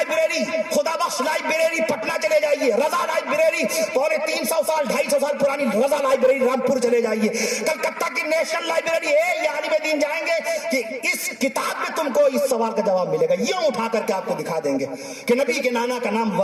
خدا بخش لائبریری پٹنہ چلے جائیے، رضا لائبریری 350 سال 250 سال پرانی رضا لائبریری رامپور چلے جائیے، کلکتہ کی نیشنل لائبریری ہے. یہ عالم دین جائیں گے کہ اس کتاب میں تم کو اس سوال کا جواب ملے گا. یوں اٹھا کر کے آپ کو دکھا دیں گے کہ نبی کے نانا کا نام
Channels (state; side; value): identical; both; correlation 1.00